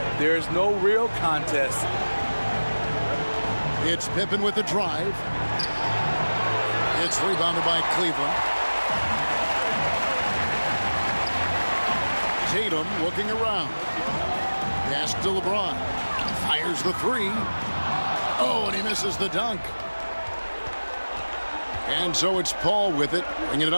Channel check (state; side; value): inverted; both; correlation -1.00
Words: there's no real contest. It's Pippen with the drive. It's rebounded by Cleveland. Tatum looking around. Pass to LeBron. Fires the 3. Oh, and he misses the dunk. And so it's Paul with it, bringing it